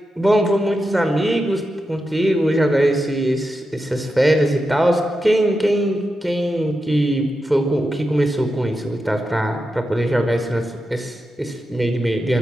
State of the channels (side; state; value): both; normal; correlation 0.89